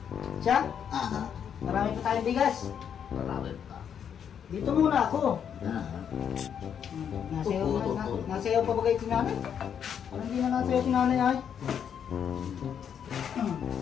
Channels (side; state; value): right; quieter; 8.2 dB